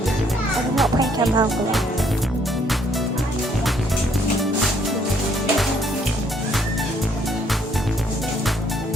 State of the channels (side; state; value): both; normal; correlation 0.66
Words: did not pay £10 for that.